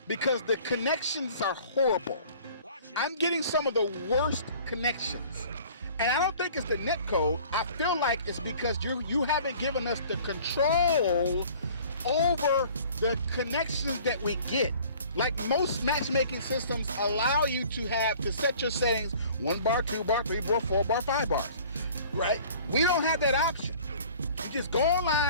because the connections are horrible. I'm getting some of the worst connections. And I don't think it's the netcode. I feel like it's because you haven't given us the control over the connections that we get. Like most matchmaking systems allow you to set your settings 1 bar, 2 bar, 3 bar, 4 bar, 5 bars, right? We don't have that option. You just go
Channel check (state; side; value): inverted; both; correlation -0.49